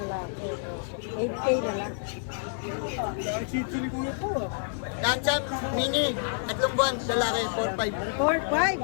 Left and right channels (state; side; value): silent; right; digital silence